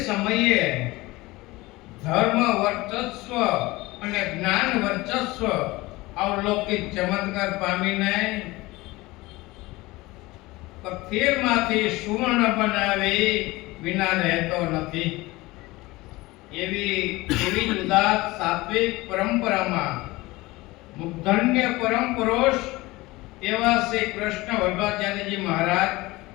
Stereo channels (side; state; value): right; quieter; 20.7 dB